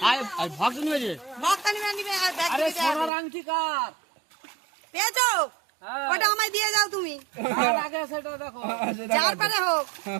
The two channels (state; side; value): drops out; left; at 3.1 s